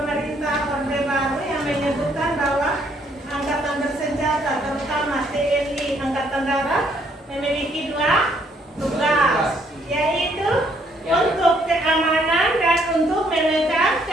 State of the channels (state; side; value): normal; both; correlation 0.68